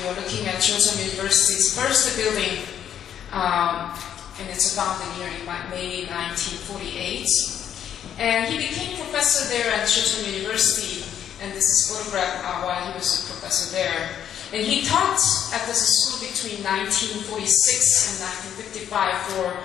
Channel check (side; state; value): right; quieter; 9.6 dB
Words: you're looking at Joseon University's first building, and it's founded here in May 1948. And he became professor there at Joseon University, and this is photographed while he was a professor there. And he taught at this school between 1946 and 1955 for